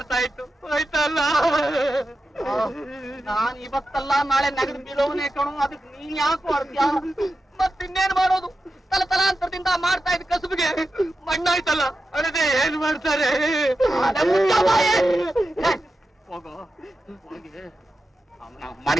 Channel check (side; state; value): both; normal; correlation 0.91